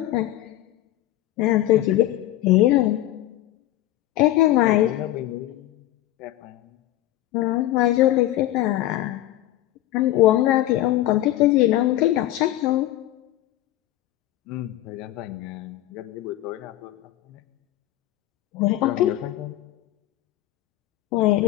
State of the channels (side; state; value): right; quieter; 14.6 dB